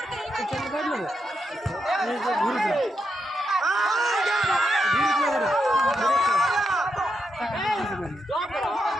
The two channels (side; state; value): both; normal; correlation 0.83